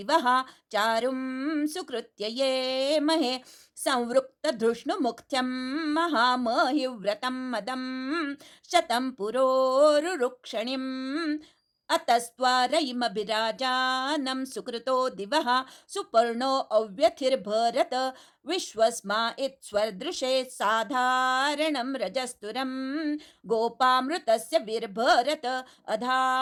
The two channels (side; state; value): both; identical; correlation 1.00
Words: चारुं सुकृत्य ये महे संवृक्तधृष्णुमुख्यं महामहिव्रतं मदं शतं पुरोरुरुक्षणिम् अतस्त्वारयिमभिराजानं सुकृतो दिवः सुपर्णो अव्यथिर्भरत विश्वस्मा इत्स्वर्दृशे साधारणं रजस्तुरं गोपामृतस्य विर्भरत